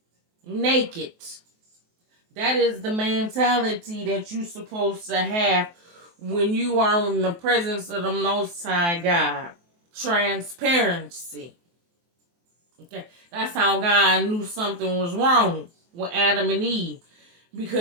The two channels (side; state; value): left; late; 23 ms